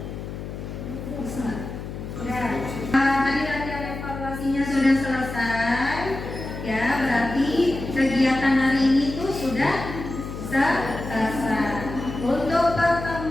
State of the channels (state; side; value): noise; left; hum, 8 dB below the sound